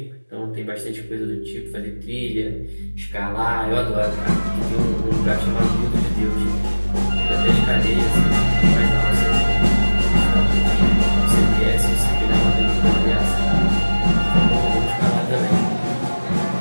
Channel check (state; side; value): inverted; both; correlation -1.00